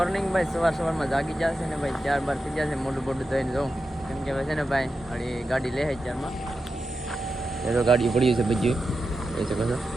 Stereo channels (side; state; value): both; normal; correlation 0.90